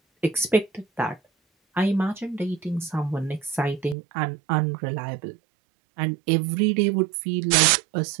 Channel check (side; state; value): left; drops out; at 4.0 s